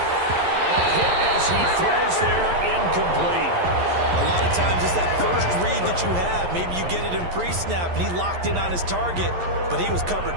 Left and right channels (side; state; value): left; late; 11 ms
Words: hit as he throws there, incomplete. A lot of times it's that first read that you have. Maybe you get it in pre-snap, and he locked in on his target, but he was covered